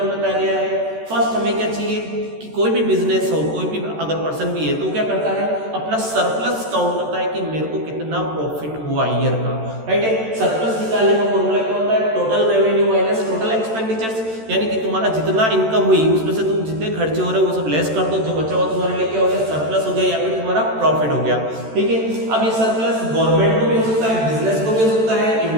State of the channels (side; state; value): left; late; 13 ms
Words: में बताया गया है। फर्स्ट हमें क्या चाहिए कि कोई भी बिजनेस हो, कोई भी अगर पर्सन भी है तो क्या करता है, अपना सरप्लस काउंट करता है कि मेरे को कितना प्रॉफिट हुआ ईयर का, राइट है। सरप्लस निकालने का फॉर्मूला क्या होता है, total revenue minus total expenditures, यानी कि तुम्हारा जितना इनकम हुई उसमें से तुम जितने खर्चे हो रहे हो वो सब लेस कर दो, जो बचा हुआ तुम्हारे लिए क्या हो गया, सरप्लस हो गया या फिर तुम्हारा प्रॉफिट हो गया। ठीक है, अब ये सरप्लस गवर्नमेंट को भी हो सकता है, बिजनेस को भी हो सकता है,